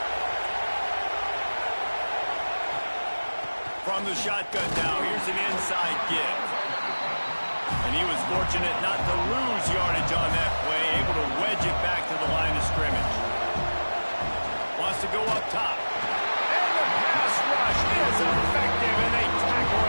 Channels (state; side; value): inverted; both; correlation -1.00